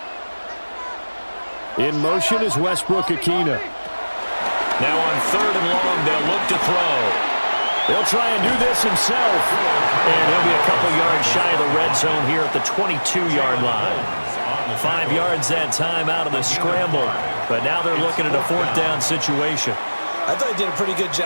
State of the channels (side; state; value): both; inverted; correlation -1.00